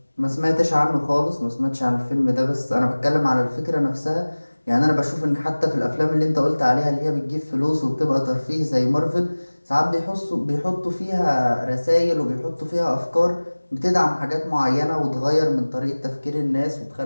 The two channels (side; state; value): both; inverted; correlation -1.00